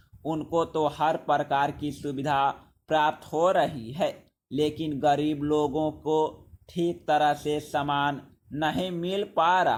उनको तो हर प्रकार की सुविधा प्राप्त हो रही है, लेकिन गरीब लोगों को ठीक तरह से सामान नहीं मिल पा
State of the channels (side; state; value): both; identical; correlation 1.00